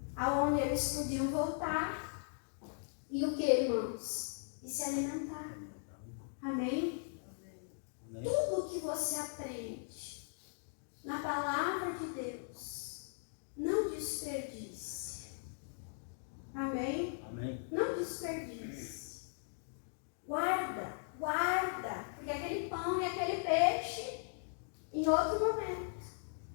aonde eles podiam voltar. E o que, irmãos? E se alimentar. Amém? Tudo o que você aprende na palavra de Deus, não desperdice. Amém? Amém. Não desperdice. Guarda. Porque aquele pão e aquele peixe, em outro momento,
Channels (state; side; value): silent; right; digital silence